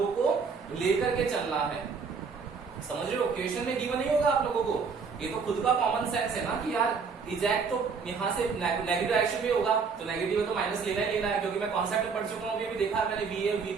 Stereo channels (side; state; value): left; quieter; 5.4 dB